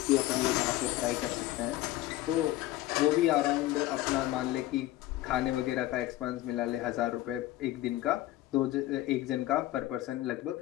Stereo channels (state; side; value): quieter; right; 15.6 dB